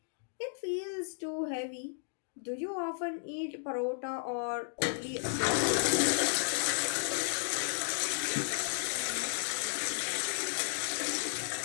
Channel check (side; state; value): right; silent; digital silence